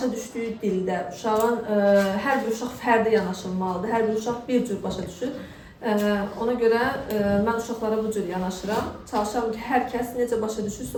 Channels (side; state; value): both; identical; correlation 1.00